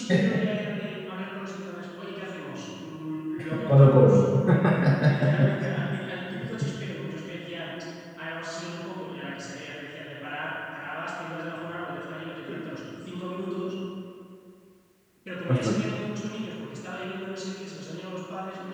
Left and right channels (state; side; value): identical; both; correlation 1.00